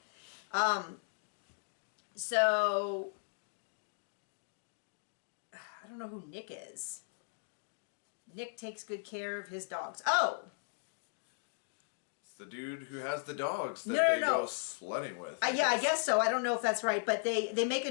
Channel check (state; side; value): silent; right; digital silence